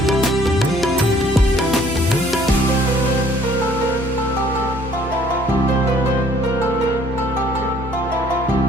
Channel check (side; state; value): both; normal; correlation 0.58